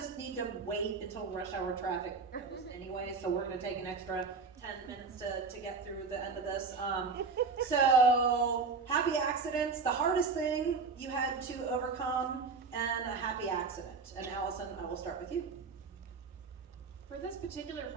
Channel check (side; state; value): left; quieter; 4.7 dB